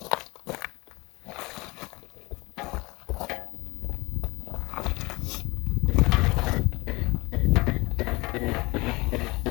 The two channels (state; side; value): quieter; right; 23.7 dB